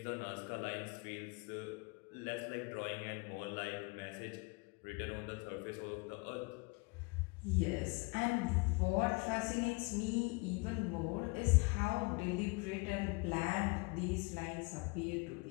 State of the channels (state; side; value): quieter; right; 29.1 dB